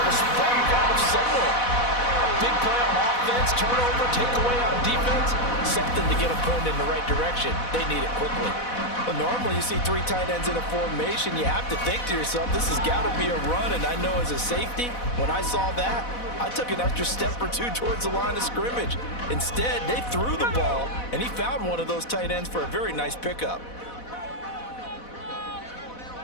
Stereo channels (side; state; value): right; late; 4.1 ms